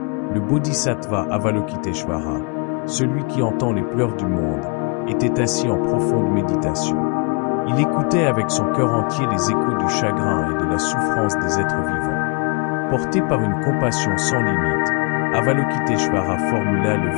le Bodhisattva Avalokiteshvara, celui qui entend les pleurs du monde, était assis en profonde méditation. Il écoutait avec son cœur entier les échos du chagrin et de la souffrance des êtres vivants. Porté par une compassion sans limite, Avalokiteshvara formula le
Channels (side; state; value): right; quieter; 32.1 dB